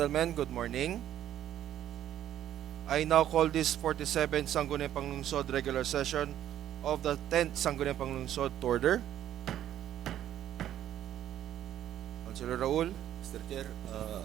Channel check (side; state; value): left; quieter; 11.6 dB